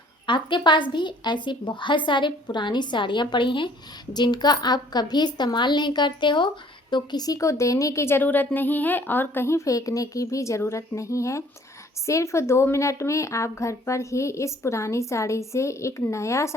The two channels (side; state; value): both; normal; correlation 0.57